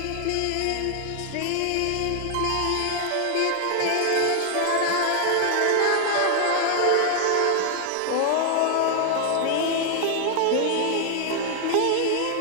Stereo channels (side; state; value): both; different; correlation 0.00